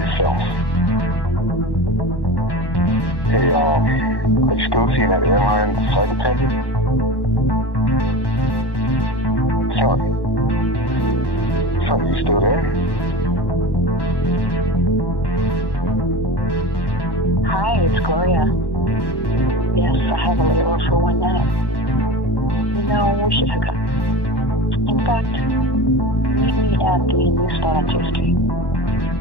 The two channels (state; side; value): late; right; 1.1 ms